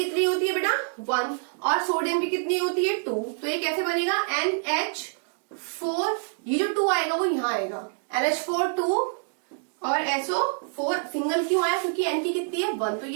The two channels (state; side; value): silent; left; 61 dB below the other